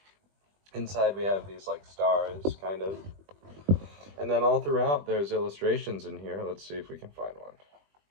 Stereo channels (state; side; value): late; left; 20 ms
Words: Inside we have these like stars, kind of. And then all throughout there's illustrations in here. Let's see if we can find one.